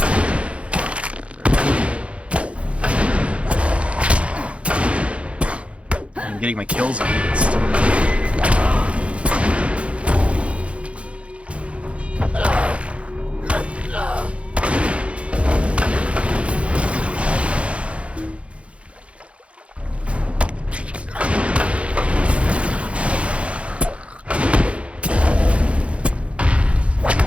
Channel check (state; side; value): late; left; 0.061 ms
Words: I'm getting my kills on it.